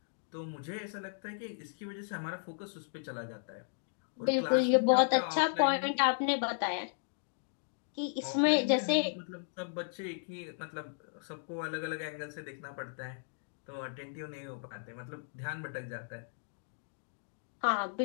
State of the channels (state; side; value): silent; right; digital silence